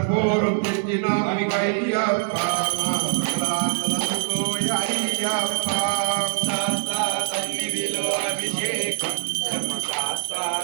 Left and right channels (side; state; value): left; silent; 61 dB below the other